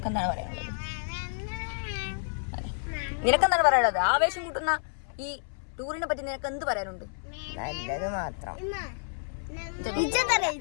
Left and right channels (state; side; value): silent; right; 58 dB below the other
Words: എന്താണ് പറയാനുള്ളത്? നിനക്കെന്താണ് പറയാനുള്ളത്? ആവേശം കൂട്ടുന്ന ഈ ടൂറിനെ പറ്റി നിനക്ക് എന്ത് പറയാനുണ്ട്? നല്ലത് മാത്രം.